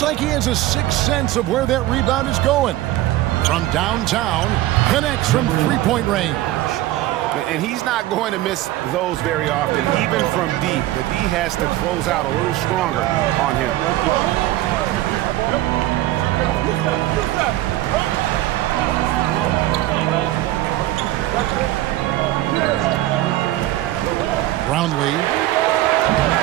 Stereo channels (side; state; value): left; quieter; 15.6 dB